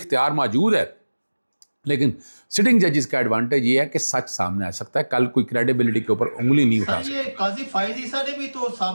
موجود ہے, لیکن سٹنگ ججز کا ایڈوانٹیج یہ ہے کہ سچ سامنے آ سکتا ہے. کل کوئی کریڈیبلٹی کے اوپر انگلی نہیں اٹھا سکتا. یہ قاضی فائز عیسیٰ نے بھی تو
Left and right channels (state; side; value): inverted; both; correlation -1.00